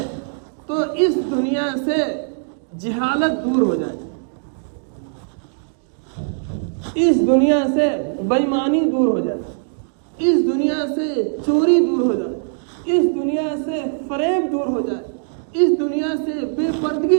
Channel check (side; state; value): left; silent; digital silence